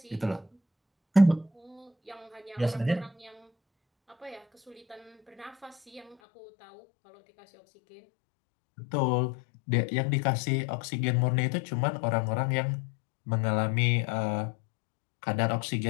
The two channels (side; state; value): right; drops out; at 6.2 s